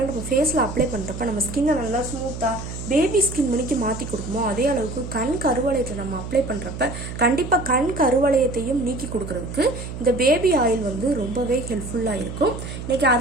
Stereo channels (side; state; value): right; noise; hum, 8 dB below the sound